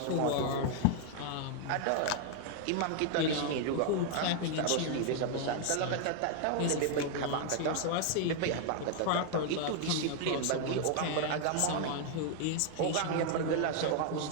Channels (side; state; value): both; different; correlation 0.00